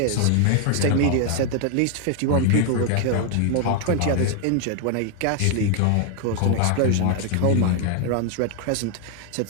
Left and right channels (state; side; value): different; both; correlation 0.00